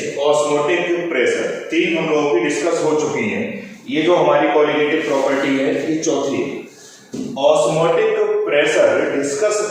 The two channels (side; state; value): both; identical; correlation 1.00